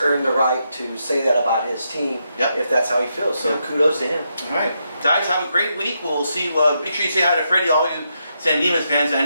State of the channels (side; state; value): both; inverted; correlation -0.82